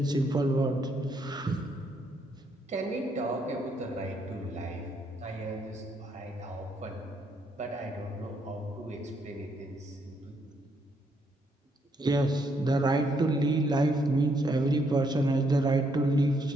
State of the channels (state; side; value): normal; both; correlation 0.73